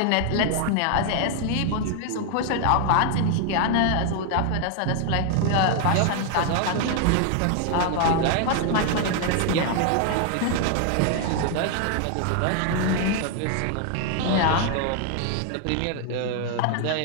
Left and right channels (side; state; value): both; different; correlation 0.00